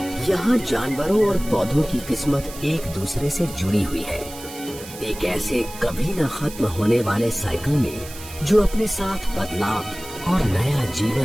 यहाँ जानवरों और पौधों की किस्मत एक दूसरे से जुड़ी हुई है, एक ऐसे कभी न खत्म होने वाले साइकिल में जो अपने साथ बदलाव और नया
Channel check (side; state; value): right; noise; hiss, 15 dB below the sound